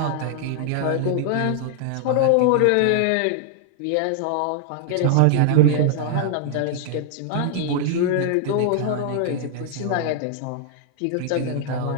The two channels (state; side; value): different; both; correlation -0.01